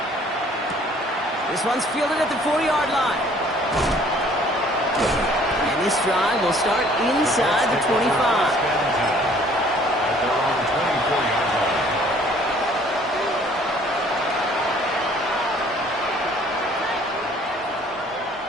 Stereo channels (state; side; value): normal; both; correlation 0.57